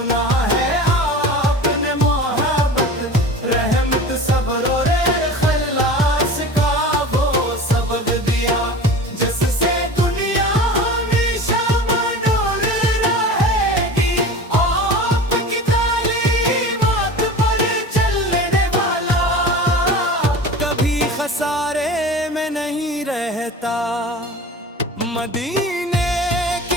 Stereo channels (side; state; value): both; normal; correlation 0.35